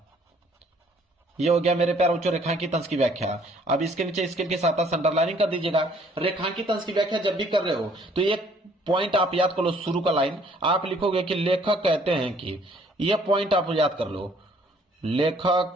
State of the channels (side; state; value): both; normal; correlation 0.60